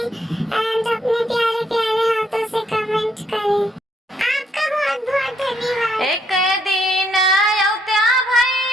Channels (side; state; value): both; normal; correlation 0.72